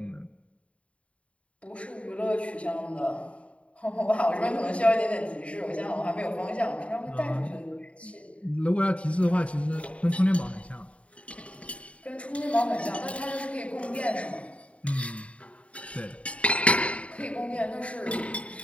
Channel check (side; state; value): right; late; 0.063 ms